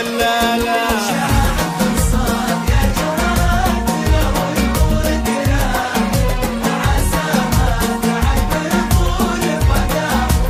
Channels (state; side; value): identical; both; correlation 1.00